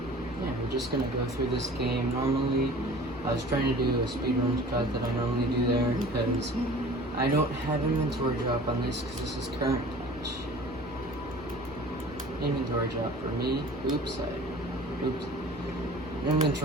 yeah, we're just gonna go through this game. Normally, I was trying to do a speedrun cut that I normally do there, because I don't have inventory drop on this, because this is current patch. Inventory drop for me.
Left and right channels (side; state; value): both; normal; correlation 0.44